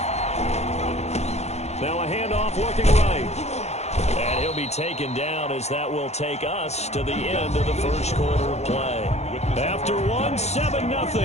Now a handoff looking right. And he'll be taken down as that will take us to the end of the first quarter of play. After one,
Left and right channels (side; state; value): right; late; 0.32 ms